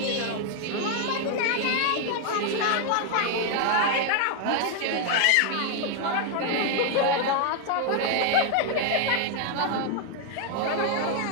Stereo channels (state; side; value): different; both; correlation 0.00